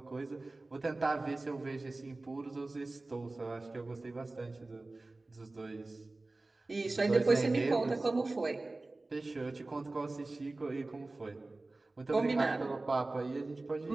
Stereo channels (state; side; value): quieter; left; 3.1 dB